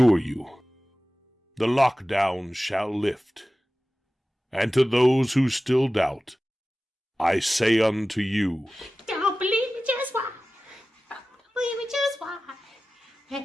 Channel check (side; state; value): both; normal; correlation 0.96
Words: you, the lockdown shall lift. And to those who still doubt, I say unto you, Don't believe me, just why? Don't believe me, just why?